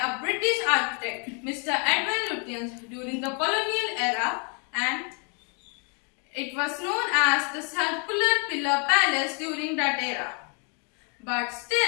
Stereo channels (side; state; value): right; quieter; 37.8 dB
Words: British architect, Mr. Edwin Lutyens, during the colonial era, and it was known as the Circular Pillar Palace during that era. But